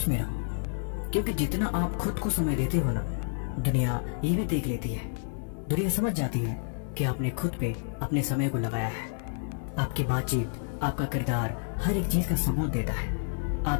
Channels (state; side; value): silent; right; digital silence